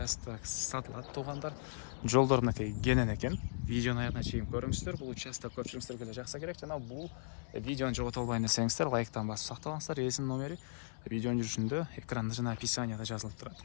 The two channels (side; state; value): right; silent; 53 dB below the other